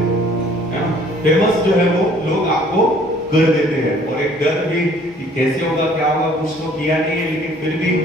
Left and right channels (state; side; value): normal; both; correlation 0.56